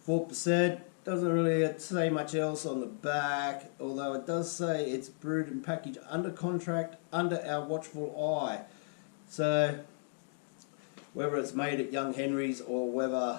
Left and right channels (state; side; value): silent; right; 55 dB below the other